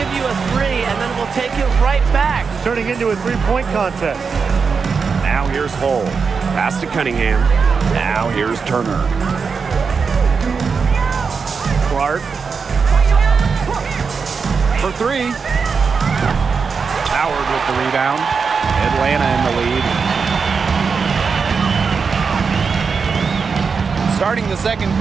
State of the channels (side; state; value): left; quieter; 5.4 dB